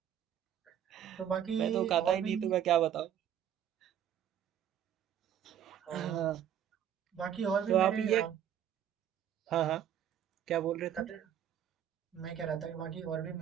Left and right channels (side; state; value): left; quieter; 9.8 dB